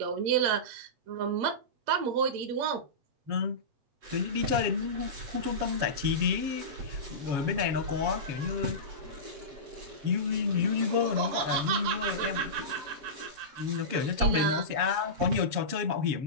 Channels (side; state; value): left; late; 7.2 ms